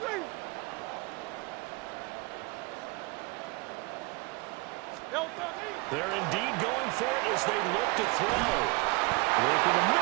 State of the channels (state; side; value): quieter; left; 26.0 dB